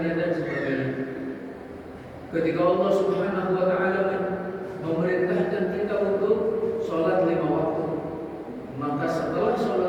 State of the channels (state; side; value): identical; both; correlation 1.00